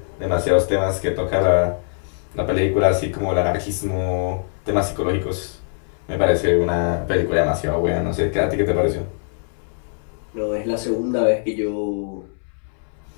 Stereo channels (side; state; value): right; silent; 64 dB below the other